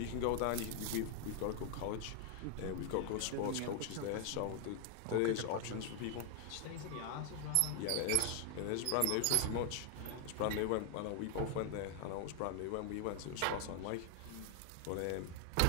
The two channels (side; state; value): both; different; correlation 0.00